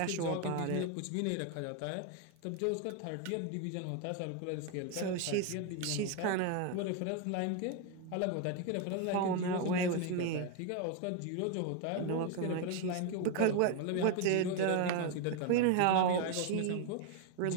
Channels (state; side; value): different; both; correlation 0.01